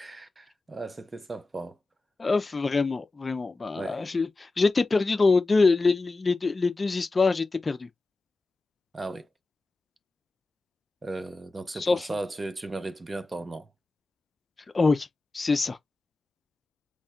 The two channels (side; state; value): right; quieter; 3.3 dB